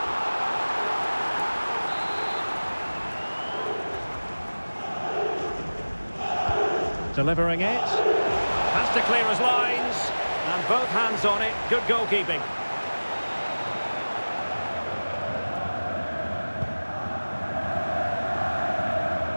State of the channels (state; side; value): inverted; both; correlation -1.00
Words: Delivering it. Has to clear his lines. And both hands on it. Good goalkeeping.